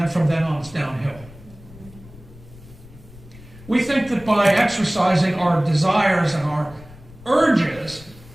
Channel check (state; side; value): noise; left; rumble, 20 dB below the sound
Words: from then on, it's downhill. We think that by exercising our desires and our urges